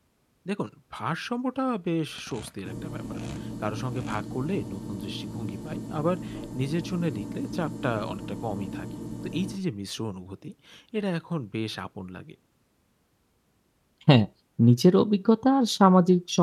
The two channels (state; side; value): identical; both; correlation 1.00